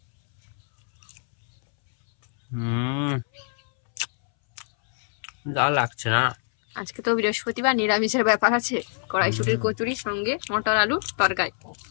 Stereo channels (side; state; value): right; silent; 62 dB below the other